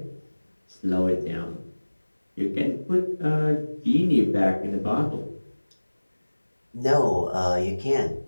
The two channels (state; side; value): inverted; both; correlation -1.00